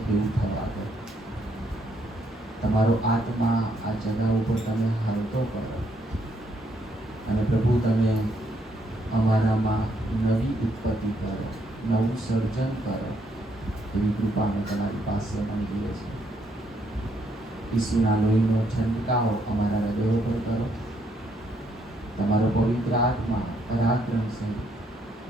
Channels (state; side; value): normal; both; correlation 0.73